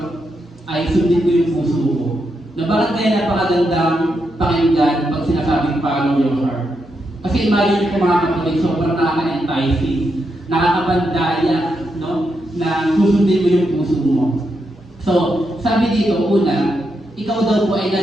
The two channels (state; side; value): normal; both; correlation 0.83